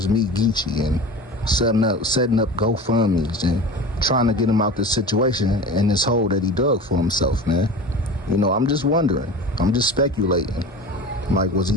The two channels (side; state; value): both; normal; correlation 0.34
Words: Me Geechi and setting up GoFundMes and trying to get him out this situation and this hole that he dug for himself, man. You know, I'm just wondering. I'm just speculating. Like, was he